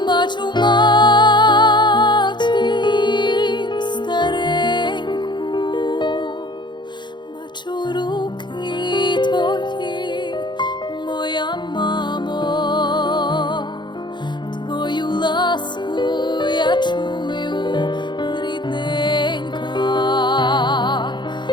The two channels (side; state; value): right; late; 0.22 ms